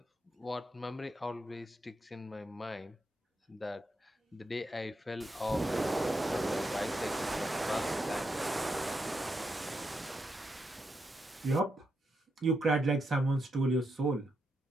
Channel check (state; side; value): normal; both; correlation 0.83